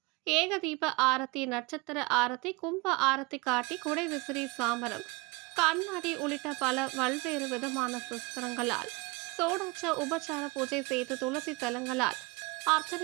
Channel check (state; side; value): quieter; left; 26.5 dB